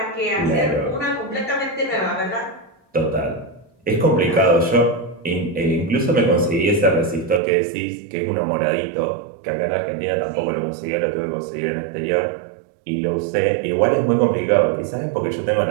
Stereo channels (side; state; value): left; drops out; at 7.4 s